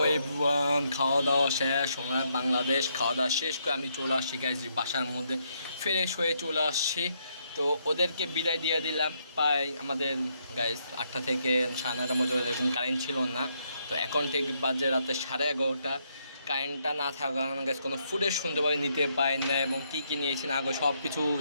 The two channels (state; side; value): inverted; both; correlation -0.75